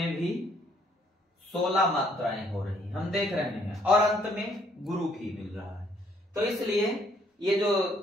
भी 16 मात्राएं हो रही हैं, हम देख रहे हैं। और अंत में गुरु भी मिल रहा है। तो इसलिए ये जो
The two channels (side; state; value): both; normal; correlation 0.66